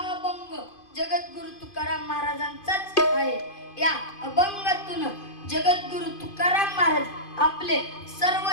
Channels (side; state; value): right; late; 2.5 ms